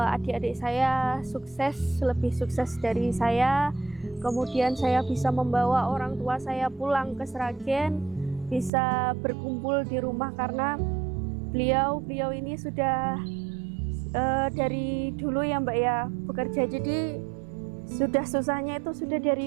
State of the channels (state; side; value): drops out; left; at 8.7 s